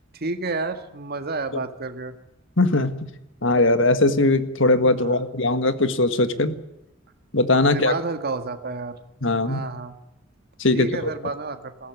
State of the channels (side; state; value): both; normal; correlation -0.10